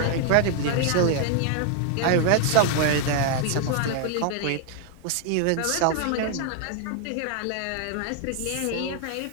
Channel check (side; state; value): both; different; correlation 0.00